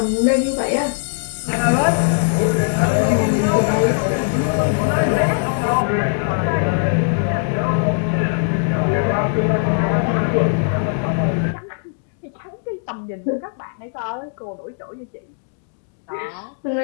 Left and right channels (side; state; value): right; silent; digital silence